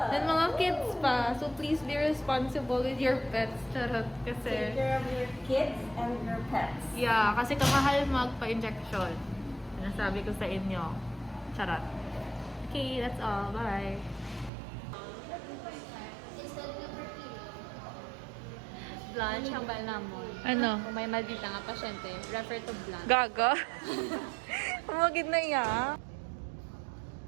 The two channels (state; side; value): drops out; left; at 14.5 s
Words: and mga kids pa. So please be responsible with your pets. Charot kasi. Take care of your kids and your pets. Yeah, kasi kamahal magpa-injection. Sinasabi ko sa inyo. Charot. Okay, that's all. Bye. Blanche ang balamon. Ano? Kung may maldita nga pasyente, refer to Blanche. Gaga? Umagid na iya.